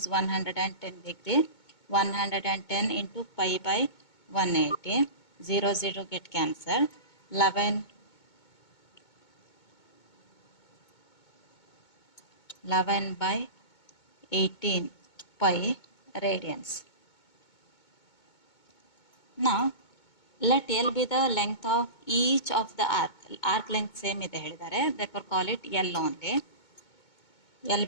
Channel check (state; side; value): late; right; 2.2 ms